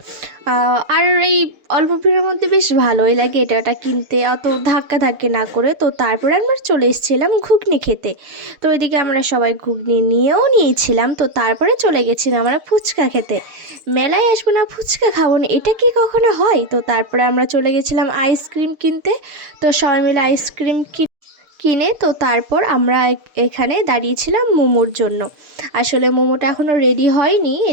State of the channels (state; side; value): late; left; 6.7 ms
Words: আর এই অল্প ভিড়ের মধ্যে বেশ ভালোই লাগে এটা ওটা কিনতে, অত ধাক্কাধাক্কি না করে। তো তারপরে আমরা চলে এসেছিলাম ঘুগনি খেতে। তো এদিকে আমরা সবাই ঘুগনি নিয়েও নিয়েছিলাম। তো তারপরে চলে গেছিলাম আমরা ফুচকা খেতে। মেলায় আসবো না, ফুচকা খাবো না, এটা কি কখনো হয়? তো তারপরে আমরা চলে গেছিলাম আইসক্রিম কিনতে। তো সবাই মিলে আইসক্রিম কিনে তো তারপর আমরা এখানে দাঁড়িয়েছিলাম মোমোর জন্য। আসলে মোমোটা এখনও রেডি হয়নি,